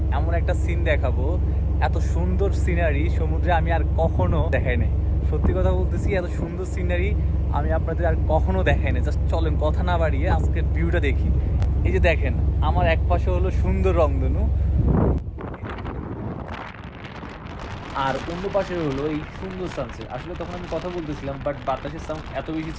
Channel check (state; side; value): identical; both; correlation 1.00